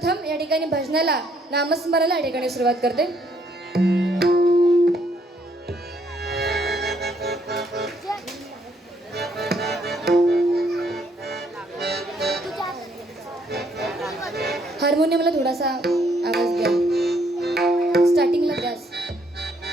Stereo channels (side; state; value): both; normal; correlation 0.69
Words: या ठिकाणी भजनाला नामस्मरणाला या ठिकाणी सुरुवात करते. हार्मोनियमला थोडासा आवाज द्या, स्टार्टिंगला द्यास.